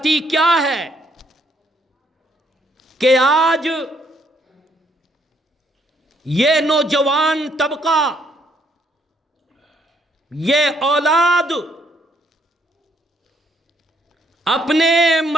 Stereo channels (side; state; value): both; normal; correlation 0.69